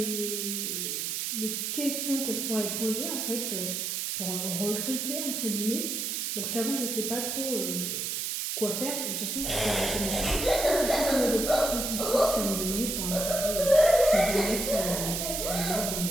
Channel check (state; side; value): noise; right; hiss, 2 dB below the sound